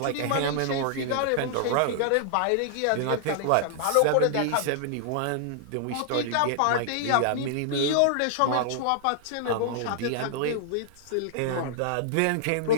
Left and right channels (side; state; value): both; different; correlation -0.01